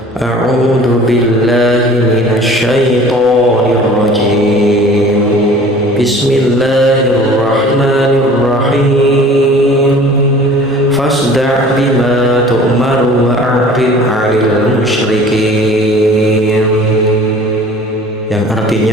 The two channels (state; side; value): normal; both; correlation 0.46